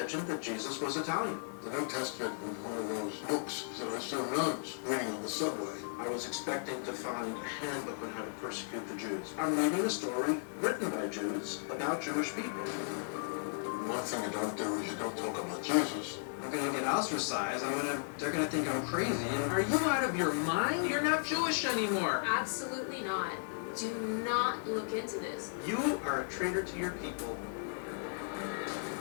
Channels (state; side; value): silent; right; digital silence